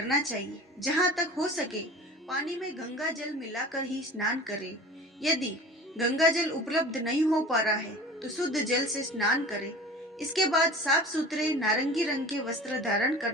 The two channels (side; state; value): both; normal; correlation 0.39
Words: चाहिए। जहाँ तक हो सके पानी में गंगा जल मिलाकर ही स्नान करें। यदि गंगा जल उपलब्ध नहीं हो पा रहा है तो शुद्ध जल से स्नान करें। इसके बाद साफ सुथरे नारंगी रंग के वस्त्र धारण